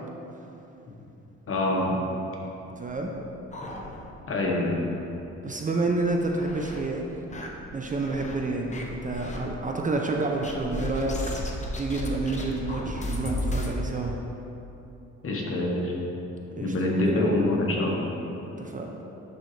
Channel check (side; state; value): both; normal; correlation 0.49